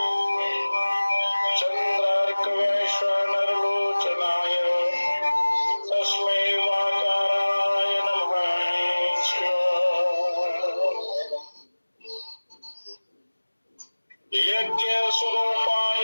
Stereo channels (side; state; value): both; inverted; correlation -1.00